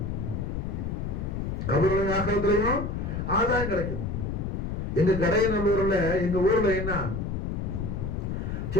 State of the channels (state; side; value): noise; left; rumble, 3 dB below the sound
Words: கபருளையும் ஆக்கிரத்திலையும் ஆதாயம் கிடைக்குது. எங்க கடையநல்லூர்ல எங்க ஊர்ல என்ன